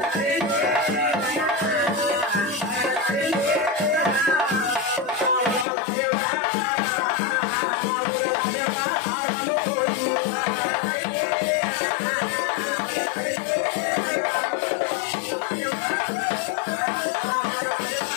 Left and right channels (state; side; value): drops out; right; at 5.7 s